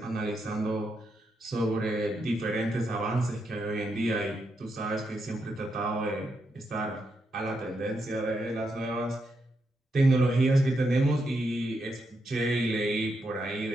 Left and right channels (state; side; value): normal; both; correlation 0.82